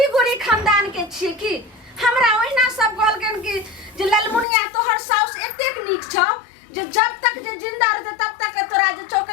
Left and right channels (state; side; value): drops out; right; at 4.5 s